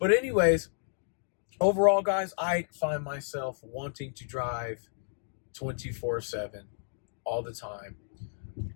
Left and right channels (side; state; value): right; silent; digital silence